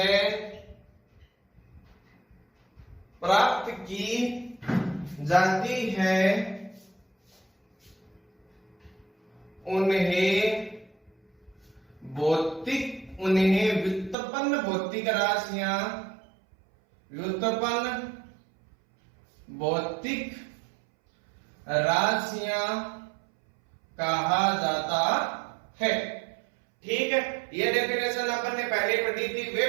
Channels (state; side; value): drops out; left; at 14.2 s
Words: प्राप्त की जाती है, उन्हें व्युत्पन्न भौतिक राशियां, व्युत्पन्न भौतिक राशियां कहा जाता है। ठीक है, यह डेफिनेशन अपन ने पहले पढ़ी थी।